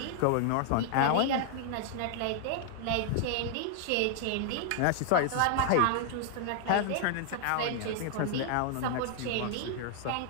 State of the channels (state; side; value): different; both; correlation -0.01